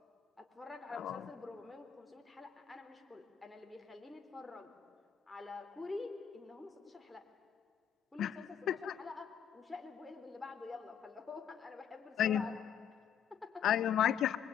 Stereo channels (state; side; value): quieter; right; 8.5 dB